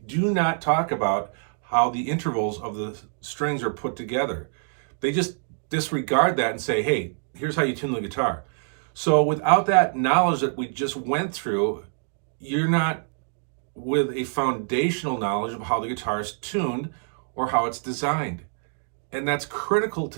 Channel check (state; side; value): silent; left; 61 dB below the other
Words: not talk about how the intervals of the strings are put together. They just disregard that and say, hey, here's how you tune the guitar. So without that knowledge that we just went through, you're not with a foundational knowledge of how the guitar is tuned or how it's designed. And that's critical